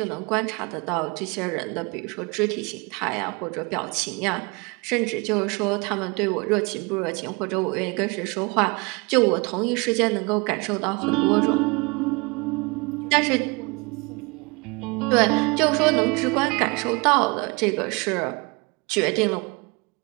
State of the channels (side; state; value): left; quieter; 28.6 dB